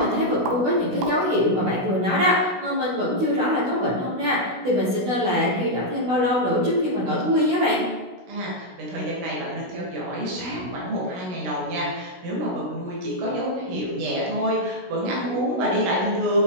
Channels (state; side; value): late; left; 16 ms